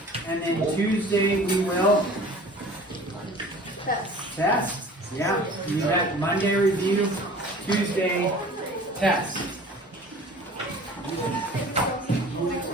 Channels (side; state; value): both; normal; correlation 0.45